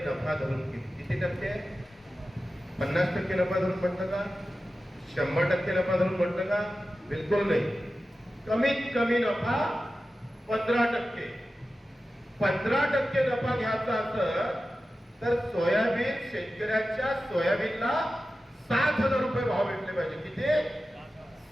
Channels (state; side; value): normal; both; correlation 0.93